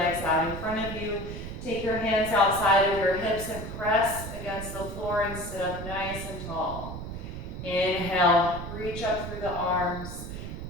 out in front of you. Take your hands outside of your hips and press against the floor and sit up nice and tall. Inhale, reach up through the arms.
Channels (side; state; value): right; noise; rumble, 8 dB below the sound